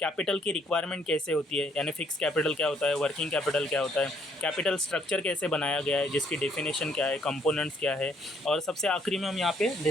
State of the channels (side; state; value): both; normal; correlation 0.67